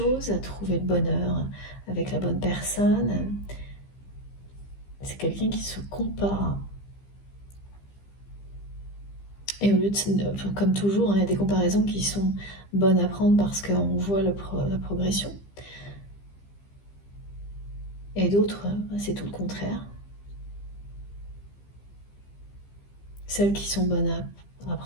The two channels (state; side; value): late; right; 15 ms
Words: à trouver le bonheur avec la bonne personne. C'est quelqu'un qui se compare. Et au lieu de, comme toujours, hein, il y a des comparaisons qui sont bonnes à prendre parce qu'on voit la progression. Et d'autres, c'est tout le contraire. Celles qui sont bonnes à